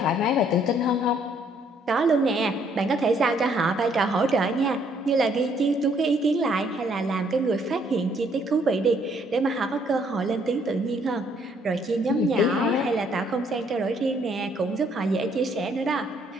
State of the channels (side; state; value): both; normal; correlation 0.66